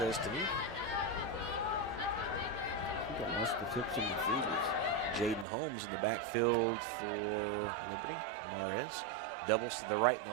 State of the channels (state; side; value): drops out; left; at 5.5 s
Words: to me. Got most of the tips in the fevers. Jaden Holmes in the backfield for Liberty. Mares doubles to the right